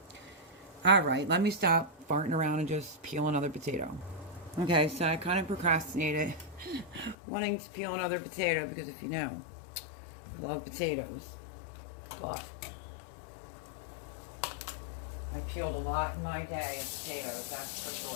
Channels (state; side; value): drops out; right; at 7.2 s